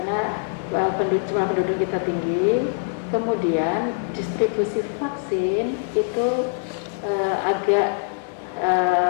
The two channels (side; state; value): right; silent; digital silence